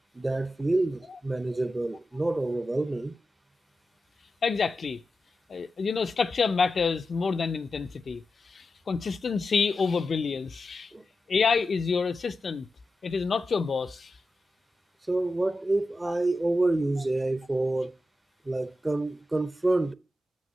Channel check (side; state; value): both; normal; correlation 0.91